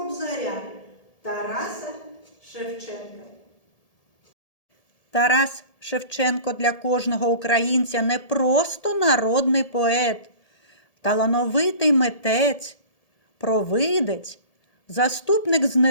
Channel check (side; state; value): right; late; 1.7 ms